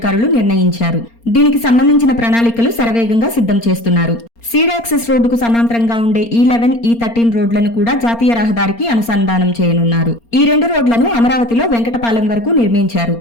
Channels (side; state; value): right; late; 4.3 ms